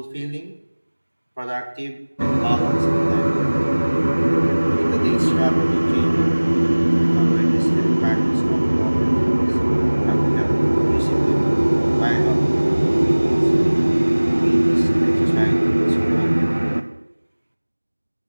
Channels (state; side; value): inverted; both; correlation -1.00